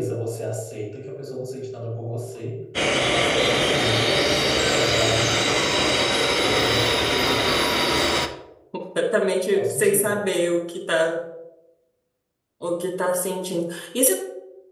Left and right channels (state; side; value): identical; both; correlation 1.00